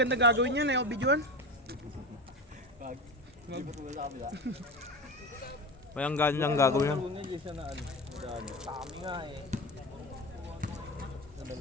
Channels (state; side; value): normal; both; correlation 0.26